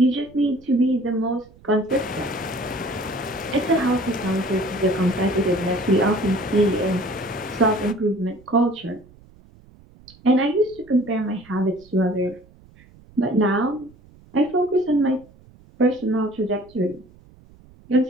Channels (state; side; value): noise; right; rumble, 25 dB below the sound